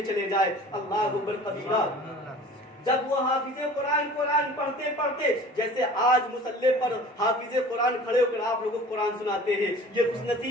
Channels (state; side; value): normal; both; correlation 0.44